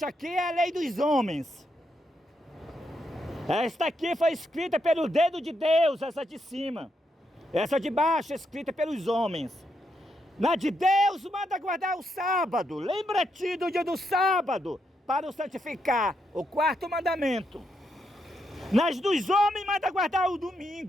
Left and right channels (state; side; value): normal; both; correlation 0.80